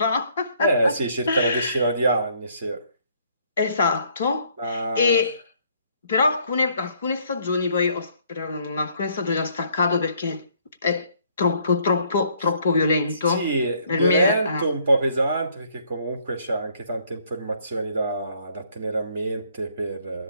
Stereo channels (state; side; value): inverted; both; correlation -0.65